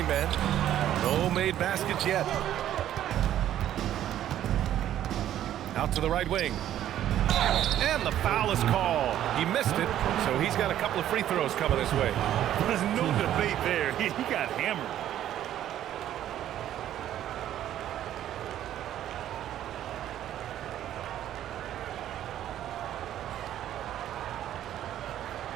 No made baskets yet. Out to the right wing. And the foul is called. He missed it, so he's got a couple of free throws coming his way. There's no debate there. He got hammered.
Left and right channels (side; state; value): left; quieter; 11.7 dB